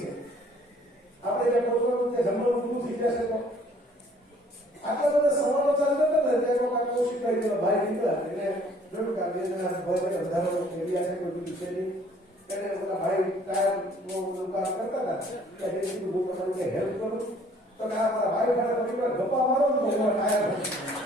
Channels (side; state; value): both; normal; correlation 0.58